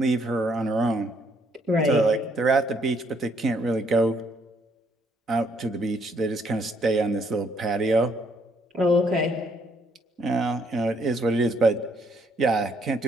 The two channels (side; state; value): both; normal; correlation 0.69